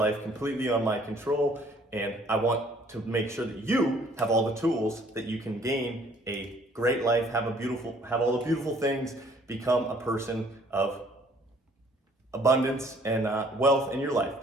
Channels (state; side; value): normal; both; correlation 0.59